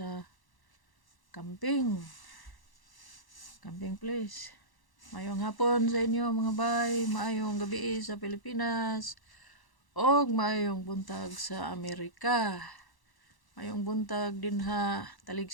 camping. Camping place. Maayong hapon sa inyo mga bay, maayong gabi sa Pilipinas. Og maayong buntag sa Amerika. Maayong buntag din ha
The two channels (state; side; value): late; right; 1.1 ms